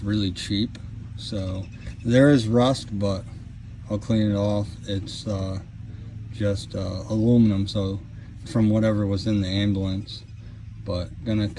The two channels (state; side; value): identical; both; correlation 1.00